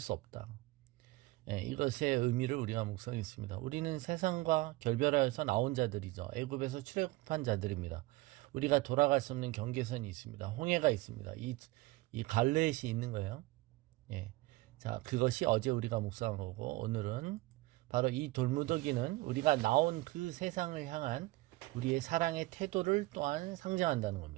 없다. 이것의 의미를 우리가 묵상했습니다. 우리는 세상과 결별하여서 나온 자들이죠. 애굽에서 출애굽한 자들입니다. 우리가 돌아갈 수 없는 경계선이 있습니다. 홍해가 있습니다. 이 갈렛이 있는 거예요. 예. 자, 그것이 어제 우리가 묵상한 거고, 오늘은 바로 이 돌무더기는 우리가 나온 그 세상을 향한 우리의 사랑의 태도를 또한 상징한다는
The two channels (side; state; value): left; quieter; 20.4 dB